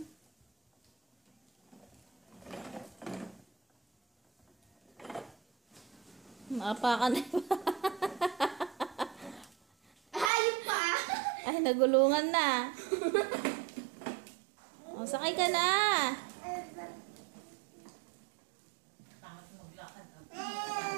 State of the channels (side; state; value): left; drops out; at 10.3 s